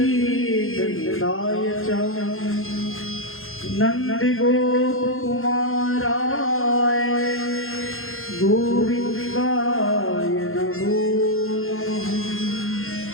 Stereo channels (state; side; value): late; right; 0.61 ms